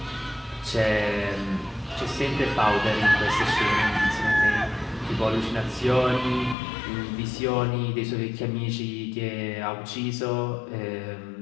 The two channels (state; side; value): drops out; right; at 6.6 s